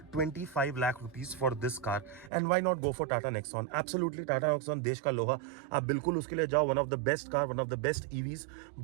25 lakh rupees for this car and why not go for Tata Nexon? Absolutely, Tata Nexon देश का लोहा, आप बिल्कुल उसके लिए जाओ. One of the best car, one of the best EVs.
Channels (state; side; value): drops out; left; at 2.3 s